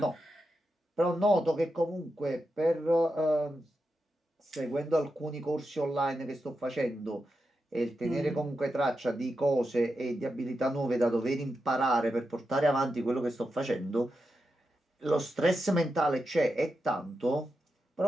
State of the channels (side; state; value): both; normal; correlation 0.88